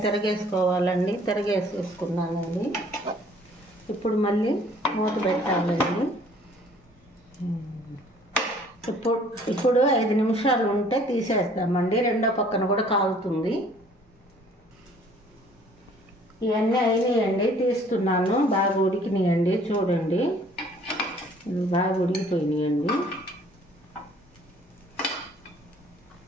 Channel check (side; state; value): both; normal; correlation 0.56